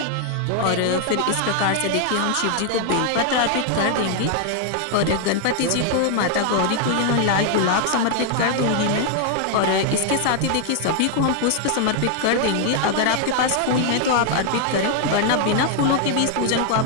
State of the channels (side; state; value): both; different; correlation 0.00